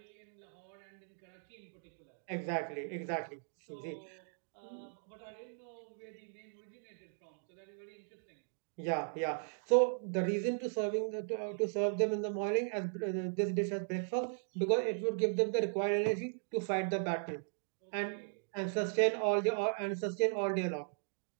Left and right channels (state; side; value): silent; left; digital silence